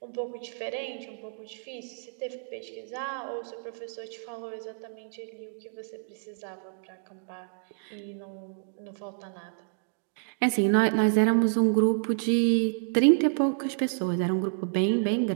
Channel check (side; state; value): left; silent; digital silence